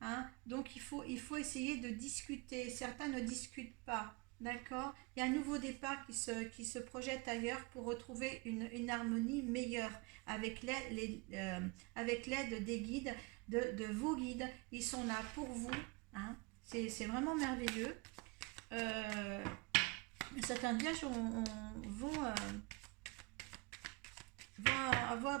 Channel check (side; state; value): left; quieter; 27.8 dB